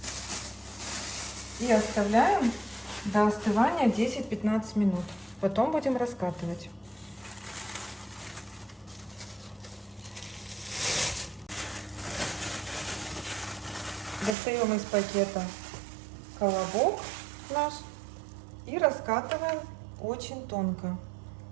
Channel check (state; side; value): drops out; left; at 14.4 s